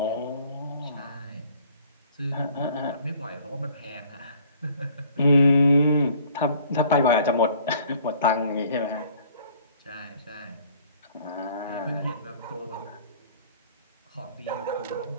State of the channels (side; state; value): both; inverted; correlation -0.56